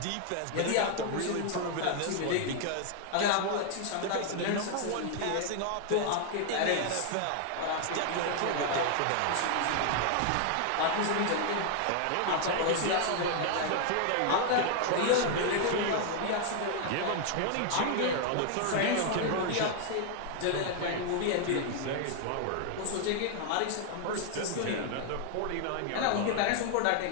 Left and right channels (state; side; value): different; both; correlation 0.00